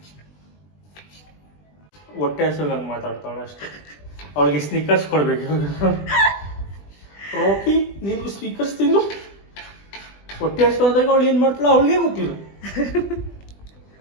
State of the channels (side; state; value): right; late; 20 ms